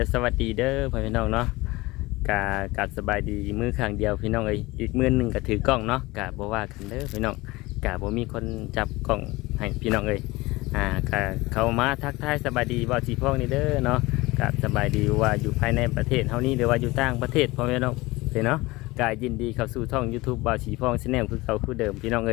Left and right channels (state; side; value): quieter; right; 21.2 dB